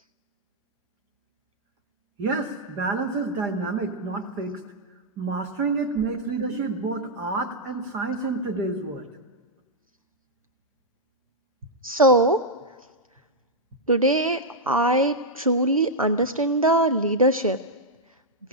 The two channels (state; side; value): normal; both; correlation -0.05